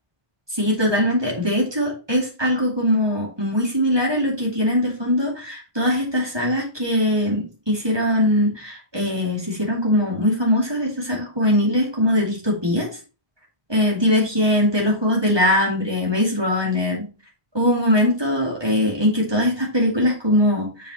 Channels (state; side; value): late; left; 1.2 ms